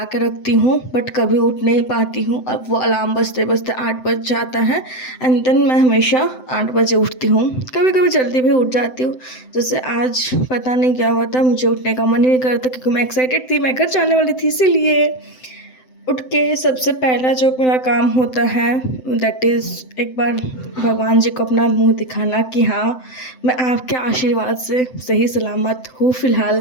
के रखती हूँ बट कभी उठ नहीं पाती हूँ। अब वो अलार्म बजते बजते 8 बज जाता है एंड देन मैं हमेशा 8 बजे उठती हूँ। कभी कभी जल्दी भी उठ जाती हूँ। जैसे आज पता नहीं क्या हुआ था, मुझे उठने का मन नहीं करता क्योंकि मैं एक्साइटेड थी, मैं घर जाने वाली थी। इसीलिए उठ के सबसे पहला जो मेरा काम होता है दैट इज़ एक बार भगवान जी को अपना मुंह दिखाना कि हाँ, मैं आपके आशीर्वाद से सही सलामत हूँ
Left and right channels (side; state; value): right; late; 7.8 ms